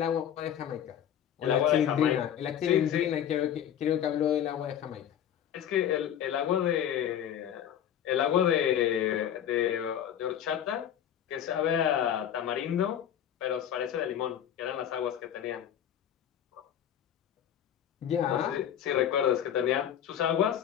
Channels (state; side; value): quieter; right; 9.9 dB